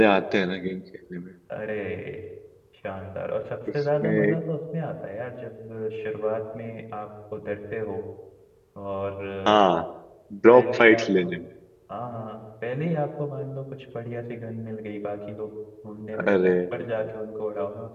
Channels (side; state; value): both; identical; correlation 1.00